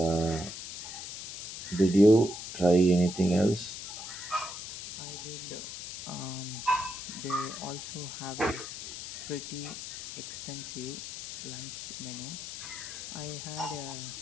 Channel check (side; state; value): left; noise; hiss, 8 dB below the sound